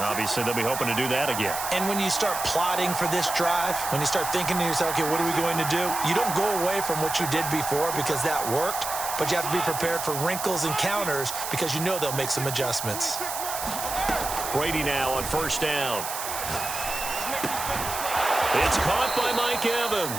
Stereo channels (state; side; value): noise; right; hiss, 6 dB below the sound